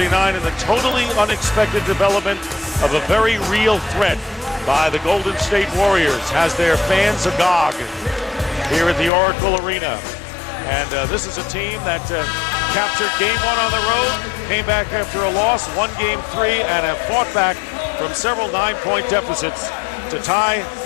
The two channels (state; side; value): drops out; right; at 9.1 s